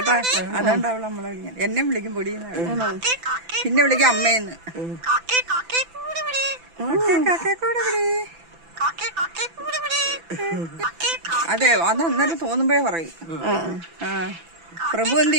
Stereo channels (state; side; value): late; left; 6.0 ms